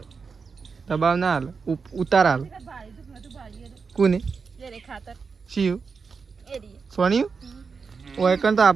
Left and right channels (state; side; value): quieter; left; 5.2 dB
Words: દબાવ ના હાલ ઉતાર હાલ કોને શિવ સોનિયું ઓય કન તો